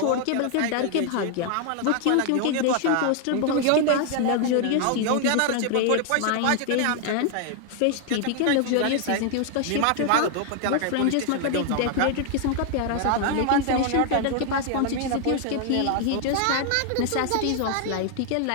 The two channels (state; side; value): different; both; correlation 0.00